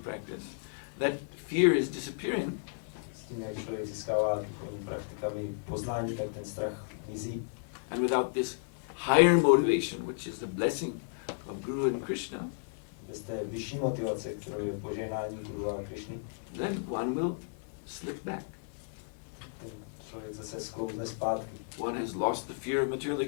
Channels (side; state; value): right; silent; 56 dB below the other